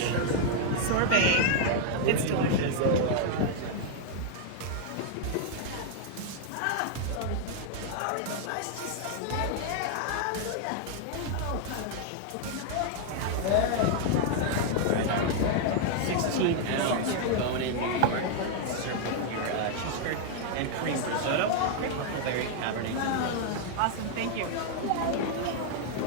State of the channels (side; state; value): both; different; correlation 0.00